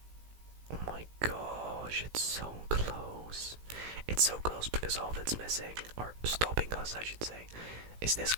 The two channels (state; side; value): late; left; 18 ms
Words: Oh my gosh, it's so close. It's so close because all that's missing, or stopping us I should say, is this